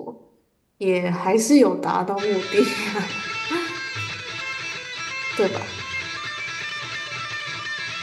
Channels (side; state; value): both; identical; correlation 1.00